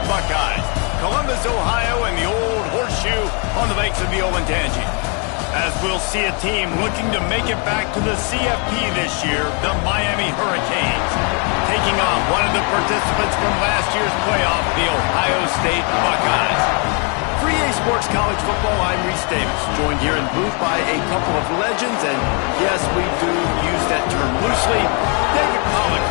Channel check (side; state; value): right; quieter; 36.2 dB